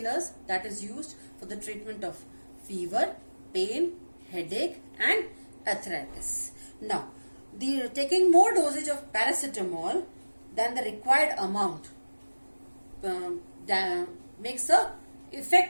that is used for the treatment of fever, pain, headache and arthritis. Now, taking more dosage of paracetamol than the required amount makes a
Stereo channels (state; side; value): inverted; both; correlation -1.00